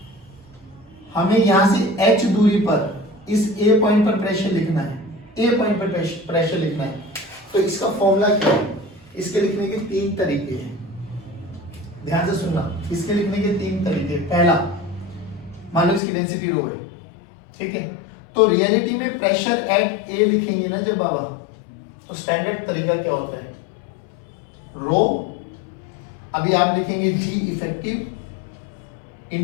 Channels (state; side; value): drops out; right; at 16.0 s